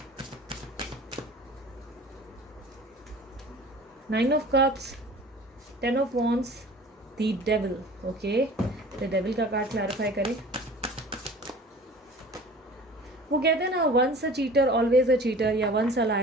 9 of cups, 10 of wands, the devil. Okay, the devil का कार्ड क्लैरिफाई करें। वो कहते हैं ना, once a cheater always a cheater, या once a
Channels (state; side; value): normal; both; correlation 0.43